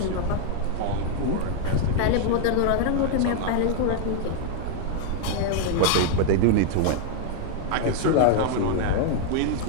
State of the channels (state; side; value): different; both; correlation 0.00